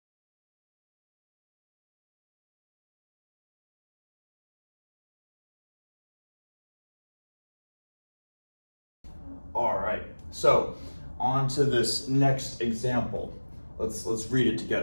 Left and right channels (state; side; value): inverted; both; correlation -1.00